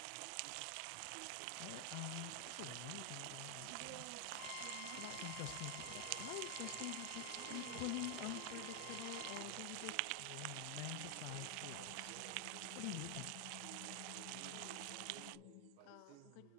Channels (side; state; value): both; different; correlation 0.00